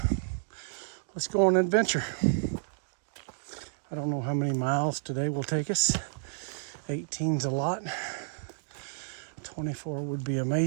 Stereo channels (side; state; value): left; silent; digital silence